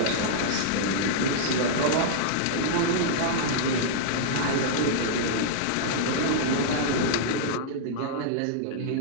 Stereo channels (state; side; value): different; both; correlation -0.02